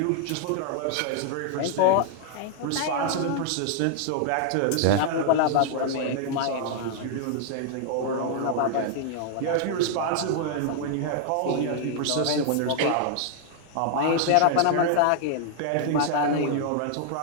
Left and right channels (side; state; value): both; different; correlation 0.00